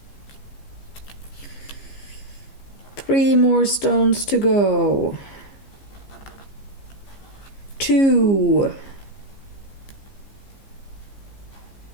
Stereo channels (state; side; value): late; right; 15 ms